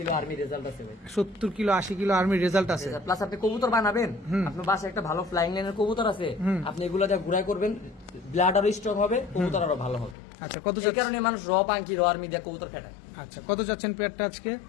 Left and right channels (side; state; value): right; drops out; at 10.2 s